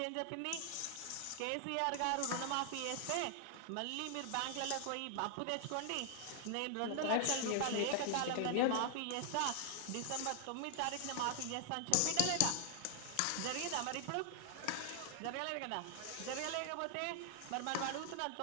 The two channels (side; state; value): both; different; correlation 0.00